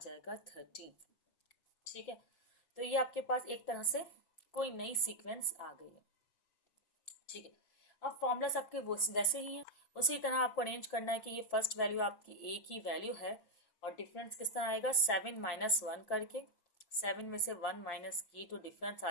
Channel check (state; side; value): late; right; 5.7 ms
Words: 13। ठीक है, तो ये आपके पास एक तरह से कोई नई सीक्वेंस आ गई है। ठीक है, अब फॉर्मूलास आपके वैसे ही हैं, उसी तरह आपको अरेंज करना है कि ये फर्स्ट वैल्यू आपकी ए की वैल्यू है, और डिफरेंस किस तरह आएगा, 7 - 1 करके, 7 में से 1 माइनस की तो डिफरेंस